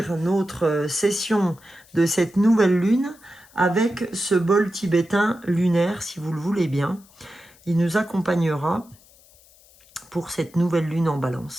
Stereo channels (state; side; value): noise; left; hiss, 27 dB below the sound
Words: notre session de cette nouvelle lune avec ce bol tibétain lunaire, si vous le voulez bien. Il nous accompagnera pour cette nouvelle lune en balance,